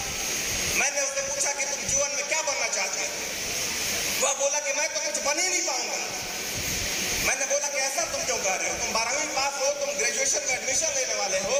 मैंने उससे पूछा कि तुम जीवन में क्या बनना चाहते हो? वह बोला कि मैं तो कुछ बन ही नहीं पाऊंगा। मैंने बोला कि ऐसा तुम क्यों कह रहे हो? तुम 12वीं पास हो, तुम ग्रेजुएशन में एडमिशन लेने वाले हो।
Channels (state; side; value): identical; both; correlation 1.00